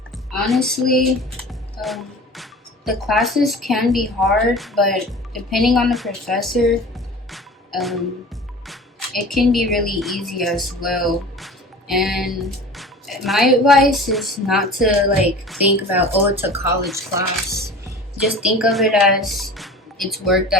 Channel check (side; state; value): both; normal; correlation 0.38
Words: honestly, the classes can be hard, but depending on the professor, it can be really easy as well. And my advice is not to like think about, oh, it's a college class. Just think of it as it's work